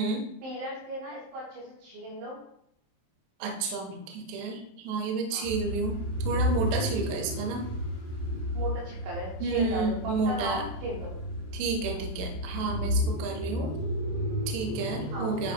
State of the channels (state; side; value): late; left; 27 ms